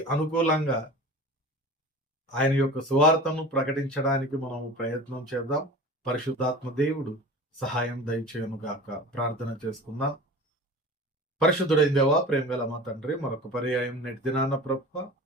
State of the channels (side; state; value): both; normal; correlation 0.37